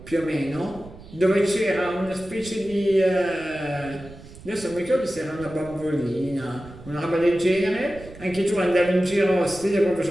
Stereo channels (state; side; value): noise; right; rumble, 18 dB below the sound